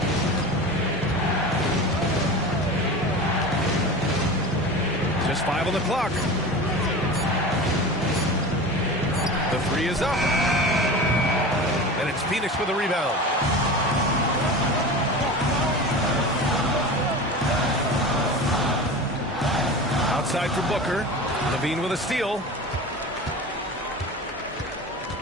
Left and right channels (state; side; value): normal; both; correlation 0.31